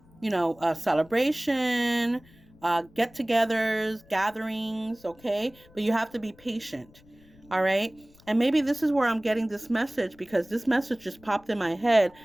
celebration, get-togethers, gatherings. Okay, but you have to be patient. All right. And maybe this is where I'm getting this message, because this message just popped in my head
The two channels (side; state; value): left; noise; rumble, 27 dB below the sound